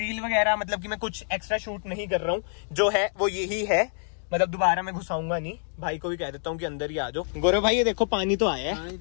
वगैरह, मतलब कि मैं कुछ एक्स्ट्रा शूट नहीं कर रहा हूँ, जो है वो यही है। मतलब दोबारा मैं घुसाऊंगा नहीं, भाई को भी कह देता हूँ कि अंदर ही आ जाओ। गौरव भाई ये देखो पानी तो आया है,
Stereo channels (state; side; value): silent; right; digital silence